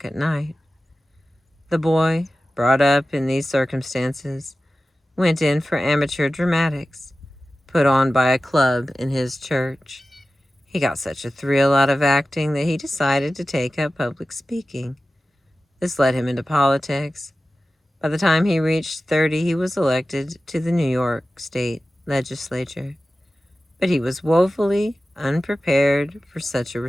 at night. The boy, brought up in these circumstances, went in for amateur dramatics, put on by a club in his church. He got such a thrill out of acting that he decided to take up public speaking. This led him into politics. By the time he reached 30, he was elected to the New York State Legislature. But he was woefully unprepared for such a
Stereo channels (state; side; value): normal; both; correlation 0.95